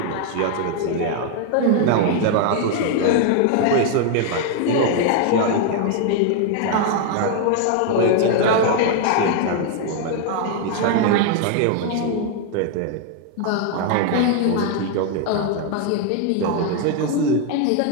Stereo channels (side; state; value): both; different; correlation 0.00